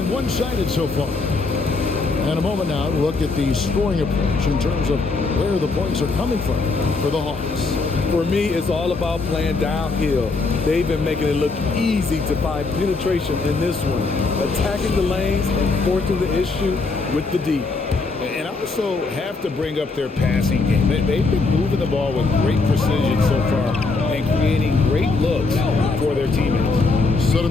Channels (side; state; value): right; quieter; 3.8 dB